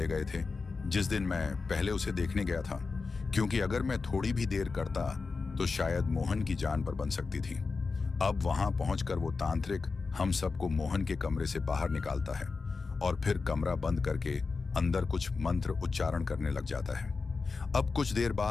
गए थे जिस दिन मैं पहले उसे देखने गया था, क्योंकि अगर मैं थोड़ी भी देर करता तो शायद मोहन की जान पर बन सकती थी। अब वहां पहुंचकर वो तांत्रिक हम सबको मोहन के कमरे से बाहर निकालता है और फिर कमरा बंद करके अंदर कुछ मंत्र उच्चारण करने लग जाता है। अब कुछ देर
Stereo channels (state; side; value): quieter; right; 4.4 dB